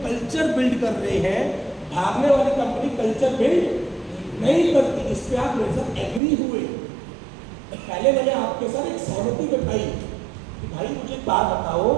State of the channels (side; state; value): left; drops out; at 6.2 s